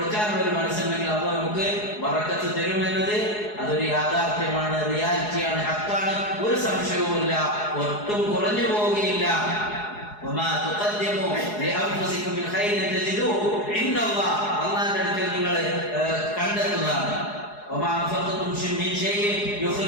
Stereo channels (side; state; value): right; late; 4.8 ms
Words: ഒരു മനസ്സുണ്ടെങ്കിൽ അത് നമുക്ക് ബറക്കത്ത് തരുമെന്നത് അതൊരു യാഥാർത്ഥ്യമാണ്, റിയാലിറ്റിയാണ്, ഹക്കാണ്, ഒരു സംശയവുമില്ല, ഒട്ടും കുറഞ്ഞു പോവുകയില്ല. അള്ളാന്റെ അടുക്കൽ നിങ്ങൾ കണ്ടെത്തുന്നതാണ്.